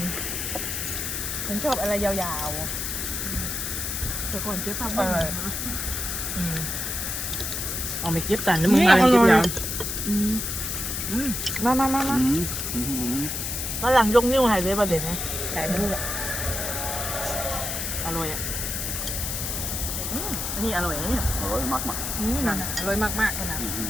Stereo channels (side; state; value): left; noise; hiss, 3 dB below the sound